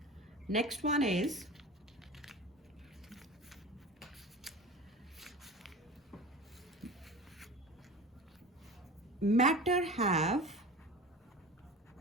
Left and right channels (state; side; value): normal; both; correlation 0.35